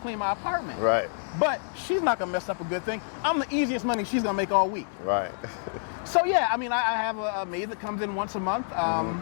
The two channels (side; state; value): right; silent; digital silence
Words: my apartment. Right. But she's not gonna mess up a good thing. I'm the easiest money she's gonna make all week. Right. So yeah, I mean, I have a maid that comes in once a month.